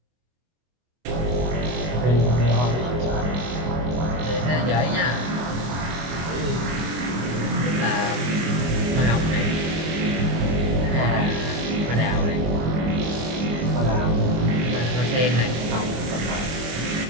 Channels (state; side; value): late; left; 24 ms